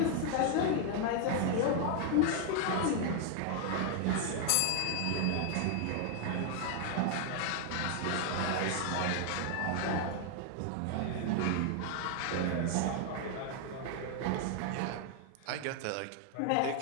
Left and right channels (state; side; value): different; both; correlation 0.00